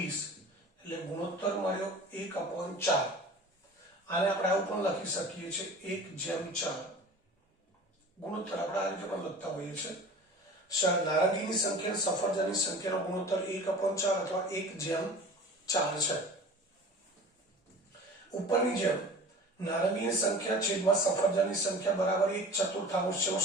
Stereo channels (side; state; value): both; normal; correlation 0.40